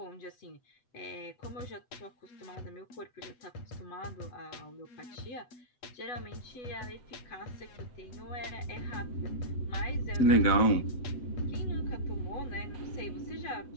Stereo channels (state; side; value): late; right; 8.0 ms